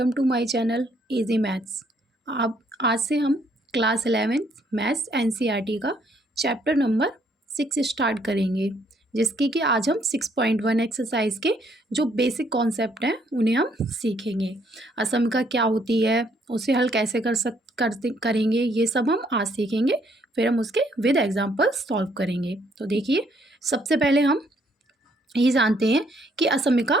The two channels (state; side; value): normal; both; correlation 0.68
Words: to my channel easy maths. आप आज से हम क्लास 11 मैथ्स एनसीईआरटी का चैप्टर नंबर 6 स्टार्ट करेंगे, जिसकी कि आज हम 6.1 एक्सरसाइज के जो बेसिक कॉन्सेप्ट हैं उन्हें हम सीखेंगे। असमिका क्या होती है, उसे हल कैसे करेंगे, ये सब हम आज सीखेंगे। फिर हम उसके विद एग्जाम्पल सॉल्व करेंगे। तो देखिए, सबसे पहले हम ये जानते हैं कि असमिका